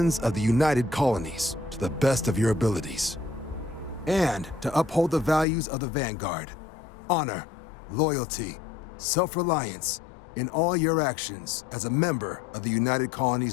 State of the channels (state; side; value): drops out; right; at 5.5 s